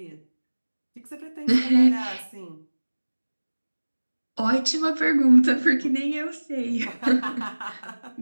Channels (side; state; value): both; inverted; correlation -1.00